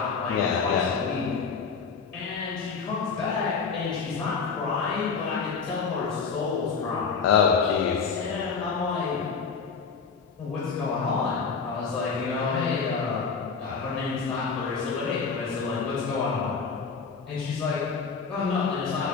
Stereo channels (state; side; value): quieter; right; 5.4 dB